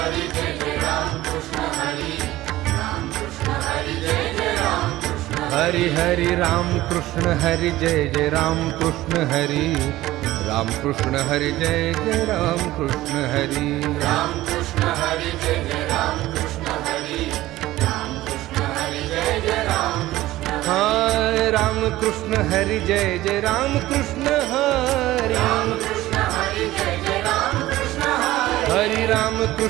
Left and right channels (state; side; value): quieter; left; 16.3 dB